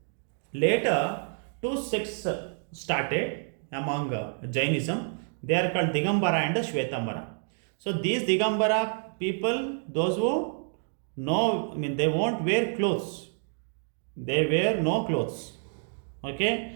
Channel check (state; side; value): silent; left; 59 dB below the other